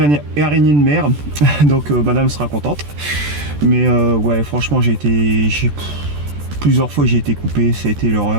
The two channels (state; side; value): late; left; 14 ms